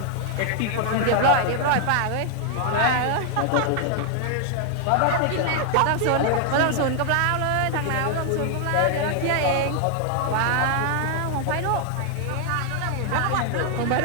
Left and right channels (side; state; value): both; different; correlation 0.00